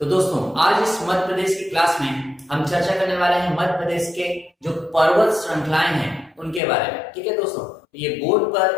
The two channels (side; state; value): right; drops out; at 6.6 s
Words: तो दोस्तों, आज इस मध्य प्रदेश की क्लास में हम चर्चा करने वाले हैं मध्य प्रदेश के जो पर्वत श्रृंखलाएं हैं उनके बारे में। ठीक है दोस्तों, ये बोर्ड